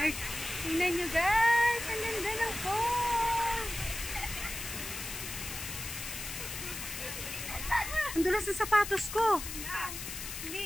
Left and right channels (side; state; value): left; noise; hiss, 7 dB below the sound